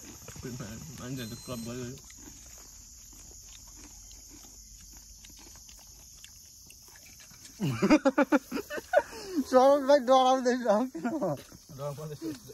सरोज भाइ डराउँदै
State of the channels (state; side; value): identical; both; correlation 1.00